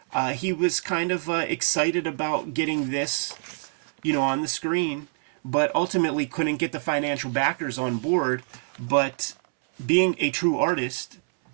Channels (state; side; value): silent; left; 61 dB below the other